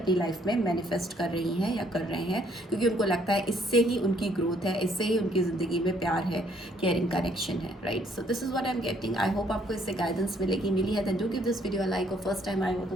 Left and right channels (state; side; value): normal; both; correlation 0.66